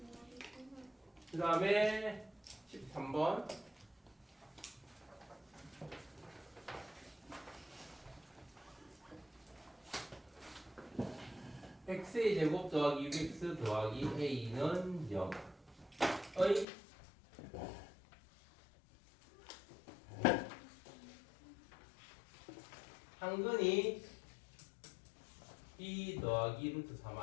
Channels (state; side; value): drops out; right; at 16.7 s